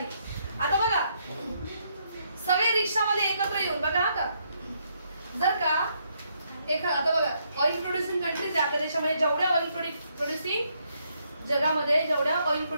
आता बघा, सगळे रिक्षामध्ये एकत्र येऊन बघा. आता जर का आता बघा, ऑइल प्रोड्युसिंग कंट्रीज आहे आपल्या देशामध्ये, जेवढ्या ऑइल प्रोड्युसिंग जगामध्ये जेवढ्या ऑइल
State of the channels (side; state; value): both; inverted; correlation -0.75